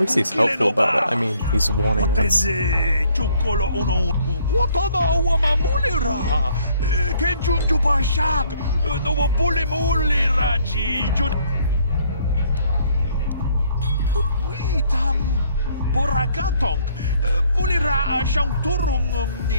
he's helpful about it. I mean, he's warning us. Borakatong mulira siyang turong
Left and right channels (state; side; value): inverted; both; correlation -0.64